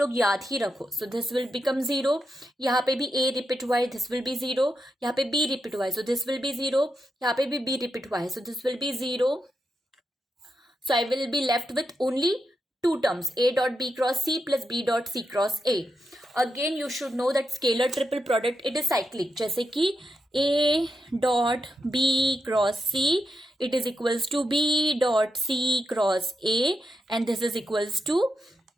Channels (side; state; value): both; normal; correlation 0.86